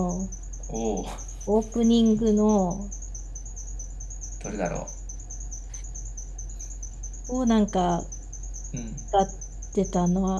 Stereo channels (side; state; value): both; identical; correlation 1.00